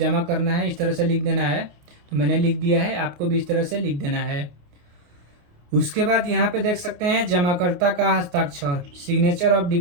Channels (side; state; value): left; late; 28 ms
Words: करना है इस तरह से लिख देना है। तो मैंने लिख दिया है, आपको भी इस तरह से लिख देना है। उसके बाद यहाँ पे देख सकते हैं जमाकर्ता का हस्ताक्षर, सिग्नेचर ऑफ